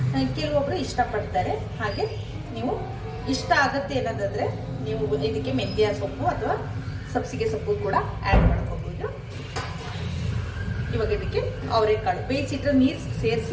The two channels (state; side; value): identical; both; correlation 1.00